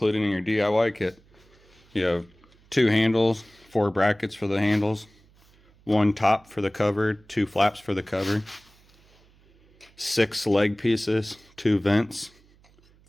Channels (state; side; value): noise; right; hum, 30 dB below the sound